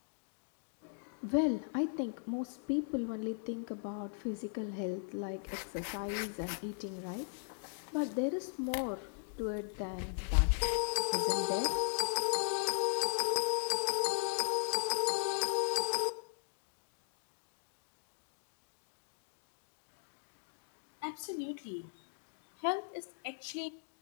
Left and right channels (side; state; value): right; silent; digital silence